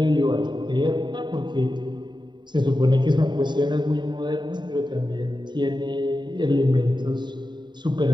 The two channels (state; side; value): late; left; 0.22 ms